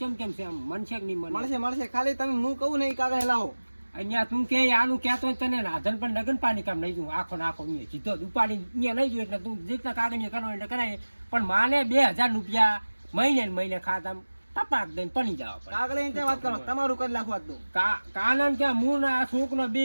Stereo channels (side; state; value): both; inverted; correlation -1.00